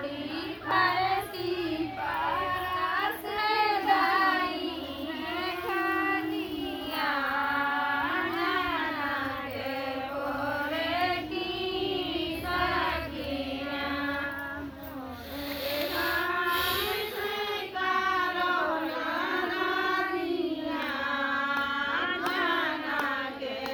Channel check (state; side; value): identical; both; correlation 1.00